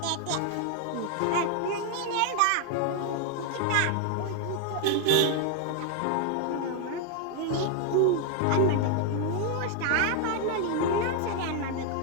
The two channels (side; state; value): both; different; correlation 0.00